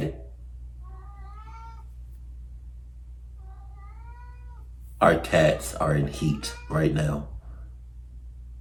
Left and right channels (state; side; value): identical; both; correlation 1.00